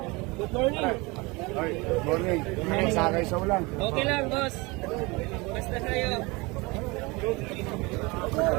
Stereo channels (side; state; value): left; quieter; 25.3 dB